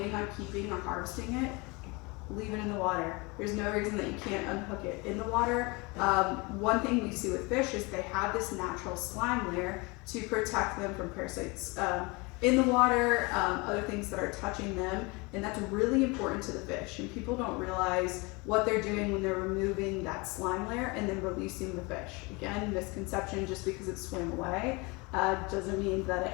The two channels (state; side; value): quieter; right; 26.8 dB